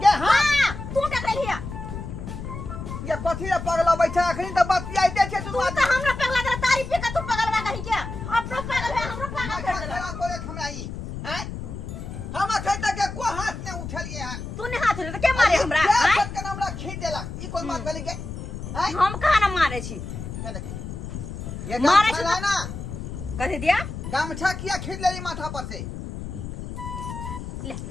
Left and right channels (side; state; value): left; noise; rumble, 8 dB below the sound